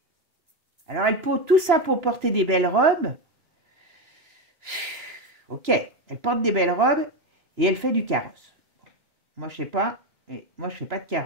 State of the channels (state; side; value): late; left; 2.9 ms